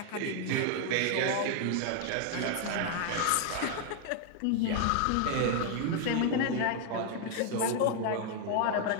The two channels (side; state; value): both; different; correlation 0.00